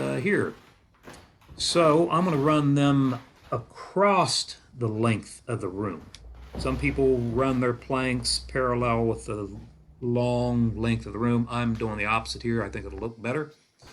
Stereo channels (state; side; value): identical; both; correlation 1.00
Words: So I'm going to run them across the length of the room. Some people run their planks parallel with the long length of the room. I'm doing the opposite here. I think it'll look better.